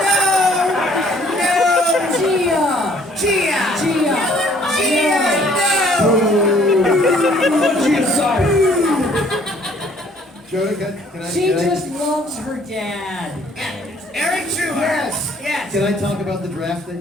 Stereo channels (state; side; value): normal; both; correlation 0.59